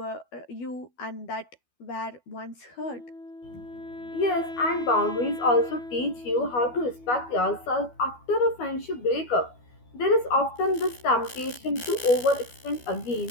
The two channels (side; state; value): right; late; 12 ms